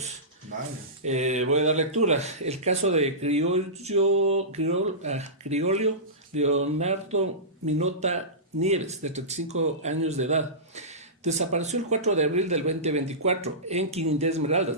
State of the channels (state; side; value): normal; both; correlation -0.19